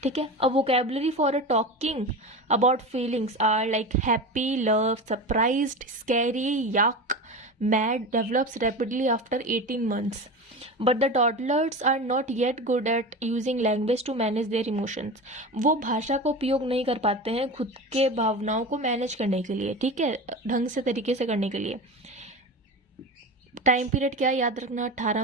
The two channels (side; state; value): both; normal; correlation 0.27